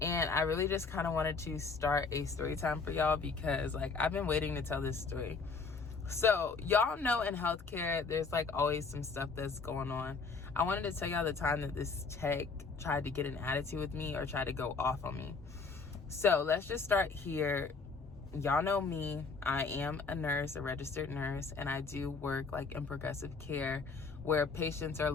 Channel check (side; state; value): right; quieter; 4.6 dB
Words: I really just kind of wanted to start a story time for y'all because, like, I've been waiting to tell this story. So, y'all know in healthcare, there's, like, always some stuff that's going on. I wanted to tell y'all the time that this tech tried to get an attitude with me or tried to go off on me. So, let's just start here. Y'all know me. I am a nurse, a registered nurse, and I do work like in progressive care where patients are a